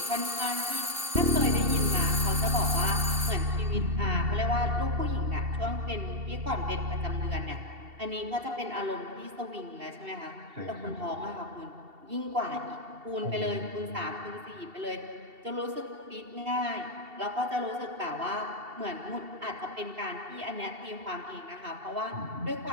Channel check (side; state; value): left; late; 2.7 ms